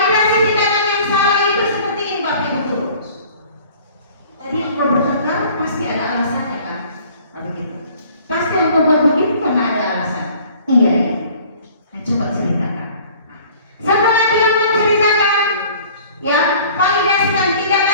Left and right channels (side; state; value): both; inverted; correlation -0.50